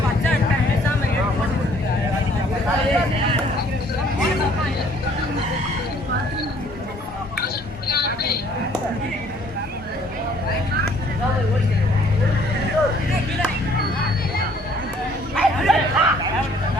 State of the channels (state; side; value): normal; both; correlation 0.60